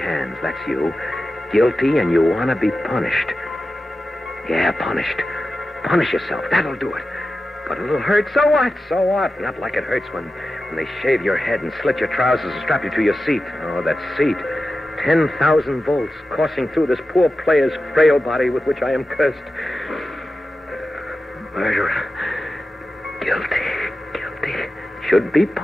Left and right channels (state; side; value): normal; both; correlation 0.93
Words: That's you. Guilty, and you want to be punished. Yeah, punished. Punish yourself. That'll do it. But it'll hurt. So what? Not like it hurts when they shave your head and slit your trousers and strap you to your seat. Oh, that seat. 10,000 volts coursing through this poor player's frail body with which I am cursed. Murderer. Guilty. Should be